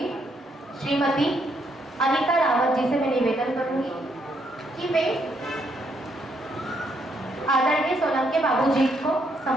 श्रीमती अनीता रावत जी से मैं निवेदन करूंगी कि वे आदरणीय सोलंके बाबूजी को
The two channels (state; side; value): normal; both; correlation 0.74